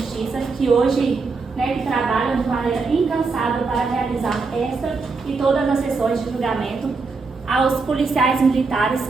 que hoje que trabalham de maneira incansável para realizar esta e todas as sessões de julgamento, aos policiais militares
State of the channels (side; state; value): left; quieter; 4.3 dB